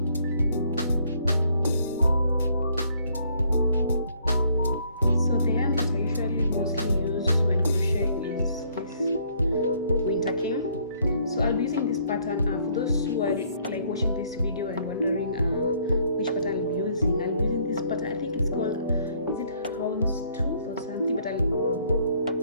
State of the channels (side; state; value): both; inverted; correlation -0.65